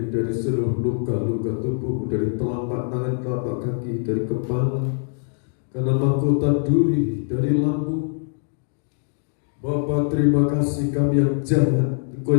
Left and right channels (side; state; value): right; silent; digital silence